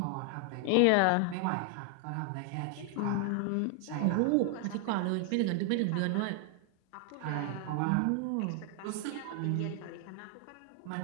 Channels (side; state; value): both; different; correlation 0.00